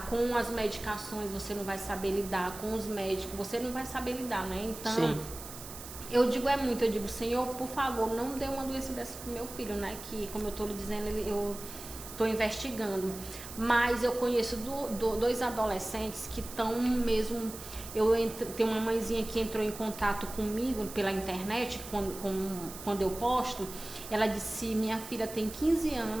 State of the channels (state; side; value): noise; right; hiss, 13 dB below the sound